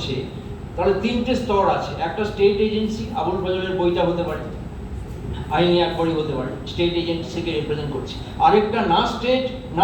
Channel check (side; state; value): both; identical; correlation 1.00